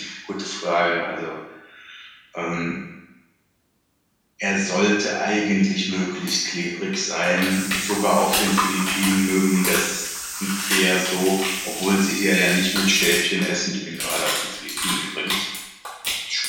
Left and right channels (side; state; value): both; identical; correlation 1.00